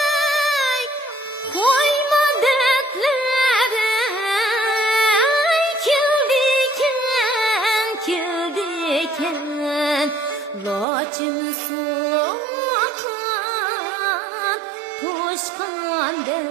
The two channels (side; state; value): left; drops out; at 10.9 s